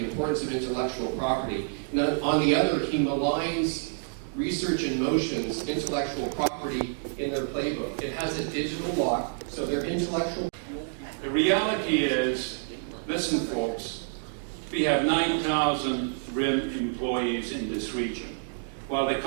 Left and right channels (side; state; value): left; silent; digital silence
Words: importance of intellectual property, and on the other he maligns Research in Motion's intellectual property in their playbook. It has a digital lock, so their intellectual... The reality is, listen folks, we have 9,000 RIM employees in this region. While the